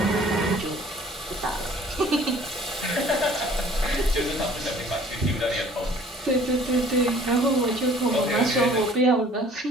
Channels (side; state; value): both; normal; correlation 0.53